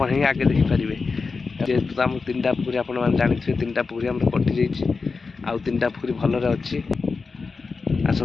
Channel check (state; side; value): quieter; right; 4.5 dB